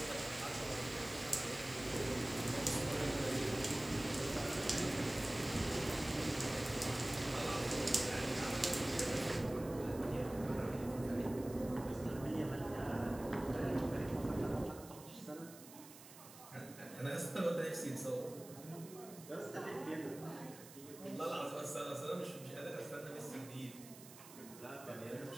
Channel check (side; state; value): right; noise; hiss, 17 dB below the sound